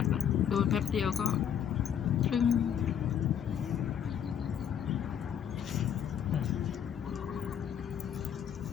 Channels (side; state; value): right; quieter; 8.8 dB